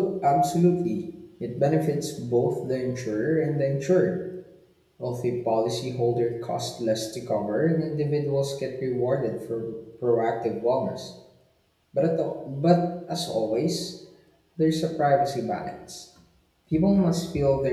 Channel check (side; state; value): both; identical; correlation 1.00